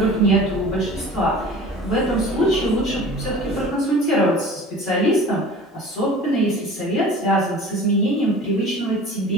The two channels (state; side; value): normal; both; correlation 0.42